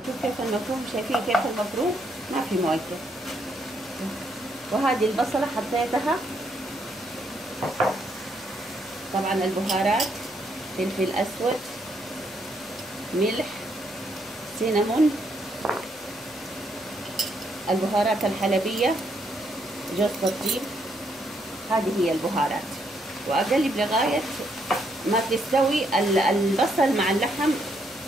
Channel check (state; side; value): normal; both; correlation 0.74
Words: شوف كيف المفروم، شايفين كيف المفروم ما في مويته. وهذه البصلة حطيتها، طبعا البهارات فلفل أسود، ملح، سينامون، البهارات الحلبية، جوز الطيب، هذه هي البهارات. وأقلب لغاية ما تستوي البصل مع اللحم،